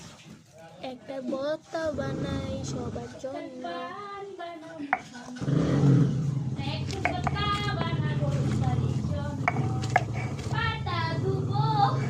একটা ভর্তা বানাই সবার জন্য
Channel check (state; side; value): identical; both; correlation 1.00